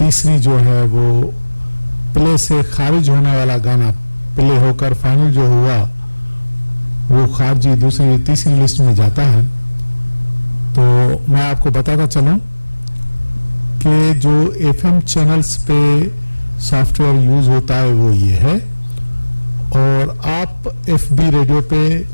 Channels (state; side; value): inverted; both; correlation -1.00